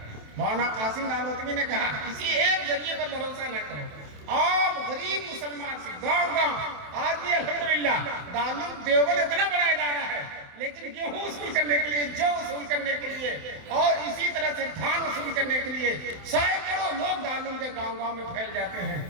مولانا قاسم نانوتوی نے کہا کسی ایک ذریعے پر بھروسہ نہ کرو، عام غریب مسلمان سے گاؤں آج بھی الحمدللہ دارالعلوم دیوبند اتنا بڑا ادارہ ہے، لیکن گیہوں وصول کرنے کے لیے، جو وصول کرنے کے لیے، اور اسی طرح سے دھان وصول کرنے کے لیے سینکڑوں لوگ دارالعلوم کے گاؤں میں پھیل جاتے ہیں۔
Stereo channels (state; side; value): late; left; 27 ms